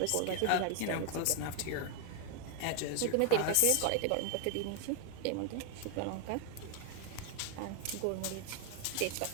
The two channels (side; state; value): both; different; correlation 0.00